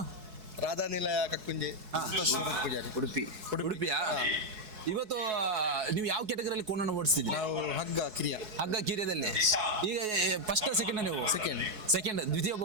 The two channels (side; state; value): left; late; 4.7 ms